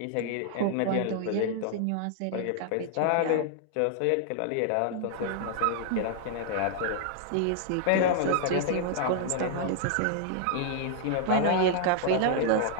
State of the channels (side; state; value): both; different; correlation -0.01